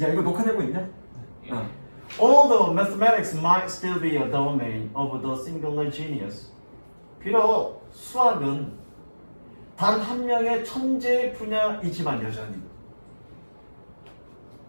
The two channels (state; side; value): inverted; both; correlation -1.00